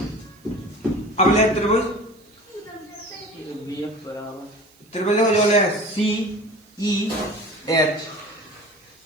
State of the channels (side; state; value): right; noise; hiss, 30 dB below the sound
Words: अब ले त्रिभुज त्रिभुज जो ले सी ई एच,